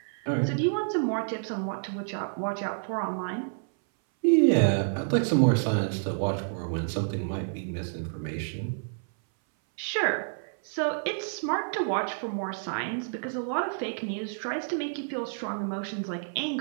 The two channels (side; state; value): left; silent; 59 dB below the other